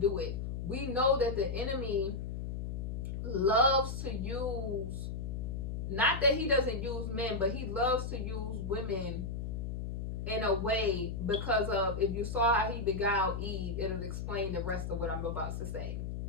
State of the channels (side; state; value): left; noise; hum, 4 dB below the sound